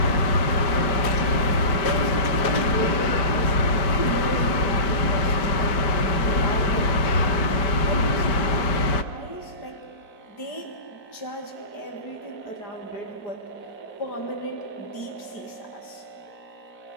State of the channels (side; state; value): right; late; 5.1 ms